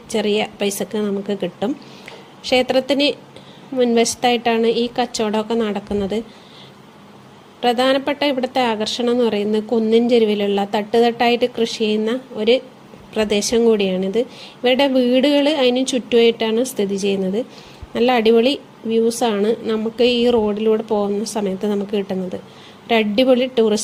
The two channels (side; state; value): both; identical; correlation 1.00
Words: ചെറിയ പൈസക്ക് നമുക്ക് കിട്ടും. ക്ഷേത്രത്തിന് മുൻവശത്തായിട്ടാണ് ഈ കച്ചവടമൊക്കെ നടക്കുന്നത്. പ്രധാനപ്പെട്ട ഇവിടുത്തെ ആകർഷണം എന്ന് പറയുന്നത് കുന്നിൻ ചെരുവിലുള്ള തട്ടുതട്ടായിട്ട് കൃഷി ചെയ്യുന്ന ഒരു പ്രദേശം കൂടിയാണിത്. ഇവരുടെ വീടുകൾ അതിന് ചുറ്റുമായിട്ടാണ് സ്ഥിതി ചെയ്യുന്നത്. നല്ല അടിപൊളി വ്യൂസാണ് നമുക്ക് ഈ റോഡിലൂടെ പോകുന്ന സമയത്ത് നമുക്ക് കിട്ടുന്നത്. ഒരു അടിപൊളി